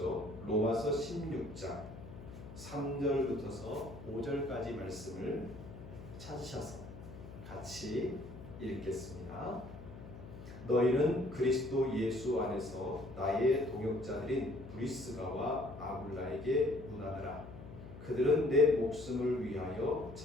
로마서 16장 3절부터서 5절까지 말씀을 찾으셔서 같이 읽겠습니다. 너희는 그리스도 예수 안에서 나의 동역자들인 브리스가와 아굴라에게 문하느라. 그들은 내 목숨을 위하여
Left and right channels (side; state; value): left; noise; hum, 14 dB below the sound